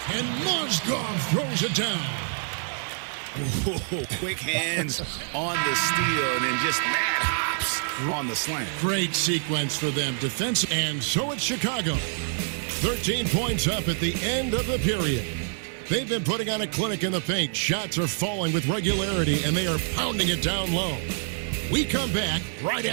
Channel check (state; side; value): silent; left; 60 dB below the other